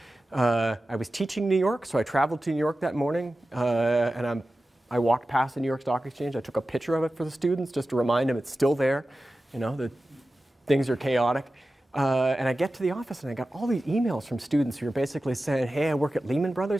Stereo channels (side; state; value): both; normal; correlation 0.94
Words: I was teaching in New York, so I traveled to New York that morning, and I walked past the New York Stock Exchange. I took a picture of it for the students just to remind them it's still there, that things are chaotic. And I get to the office, and I got all these emails from students who are basically saying, hey, I work at Lehman